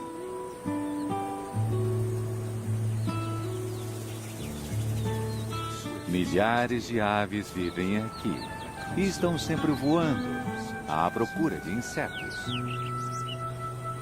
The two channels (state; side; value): identical; both; correlation 1.00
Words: Milhares de aves vivem aqui e estão sempre voando à procura de insetos.